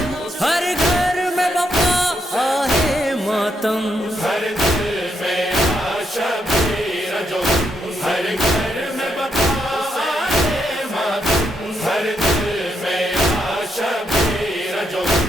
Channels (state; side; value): normal; both; correlation 0.79